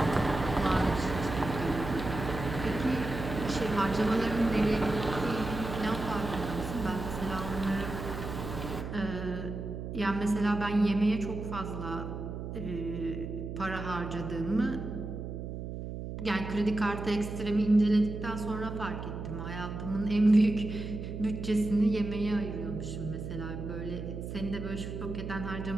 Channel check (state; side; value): noise; right; hum, 7 dB below the sound